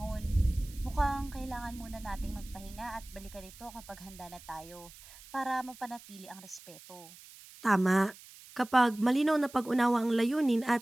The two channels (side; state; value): right; noise; hiss, 19 dB below the sound